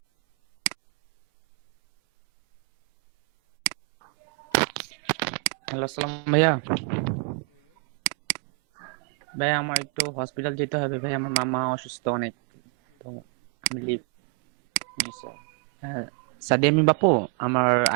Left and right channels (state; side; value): quieter; left; 40.3 dB